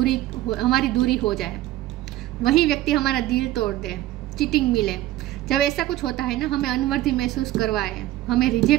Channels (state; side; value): quieter; left; 15.2 dB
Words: दूरी हो जाए, वही व्यक्ति हमारा दिल तोड़ दे, चीटिंग मिले, जब ऐसा कुछ होता है ना, हमें अनवर्दी महसूस करवाए, हमें